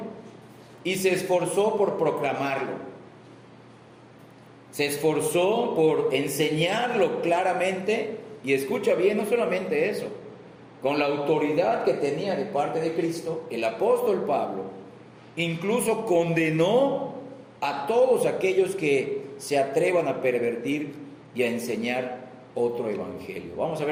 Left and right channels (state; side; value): identical; both; correlation 1.00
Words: y se esforzó por proclamarlo. Se esforzó por enseñarlo claramente, y escucha bien, no solamente eso, con la autoridad que tenía de parte de Cristo, el apóstol Pablo incluso condenó a todos aquellos que se atrevan a pervertir y a enseñar otro evangelio. Vamos a